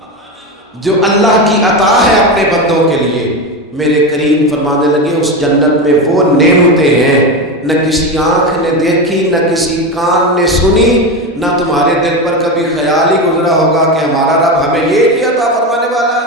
جو اللہ کی عطا ہے اپنے بندوں کے لیے. میرے کریم فرمانے لگے اس جنت میں وہ نعمتیں ہیں نہ کسی آنکھ نے دیکھی، نہ کسی کان نے سنی، نہ تمہارے دل پر کبھی خیال ہی گزرا ہوگا کہ ہمارا رب ہمیں یہ بھی عطا فرمانے والا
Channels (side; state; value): both; normal; correlation 0.18